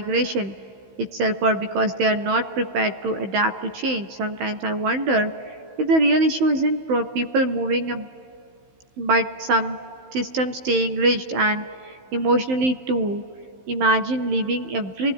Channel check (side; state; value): left; late; 16 ms